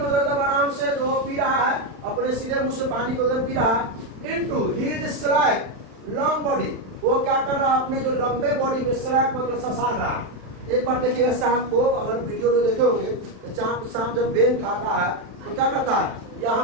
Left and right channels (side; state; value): left; late; 36 ms